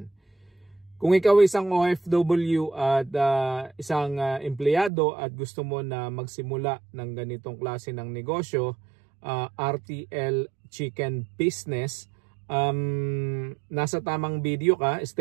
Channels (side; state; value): left; drops out; at 4.9 s